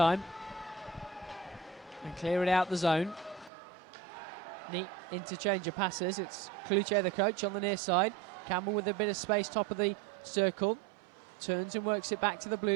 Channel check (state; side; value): drops out; left; at 3.5 s